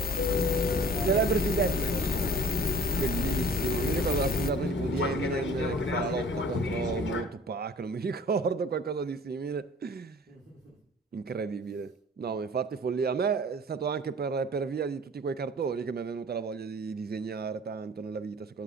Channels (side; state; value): both; normal; correlation 0.49